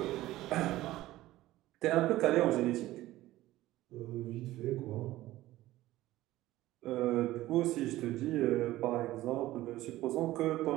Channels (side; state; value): left; quieter; 16.2 dB